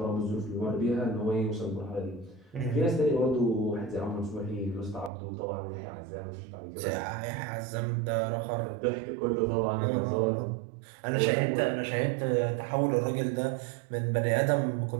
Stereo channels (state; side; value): drops out; left; at 5.1 s